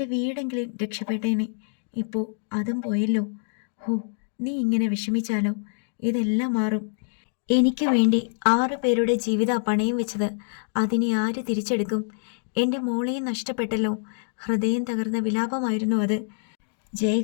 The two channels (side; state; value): right; silent; digital silence